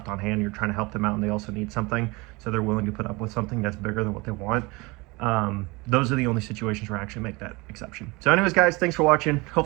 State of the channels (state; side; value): quieter; left; 24.6 dB